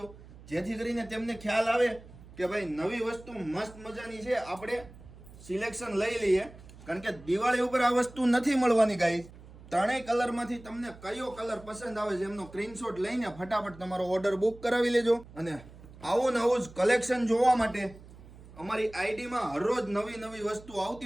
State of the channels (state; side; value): noise; right; hum, 19 dB below the sound